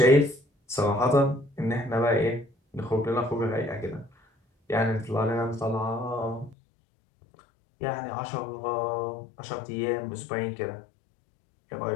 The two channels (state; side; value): drops out; right; at 6.6 s